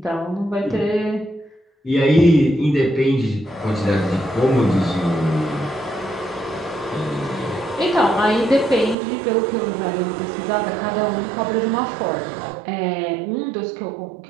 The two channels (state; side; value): drops out; left; at 9.0 s